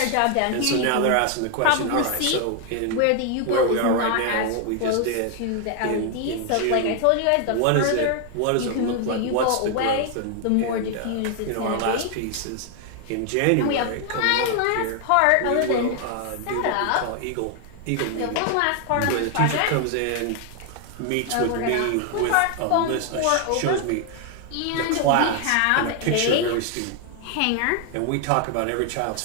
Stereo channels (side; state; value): both; different; correlation 0.00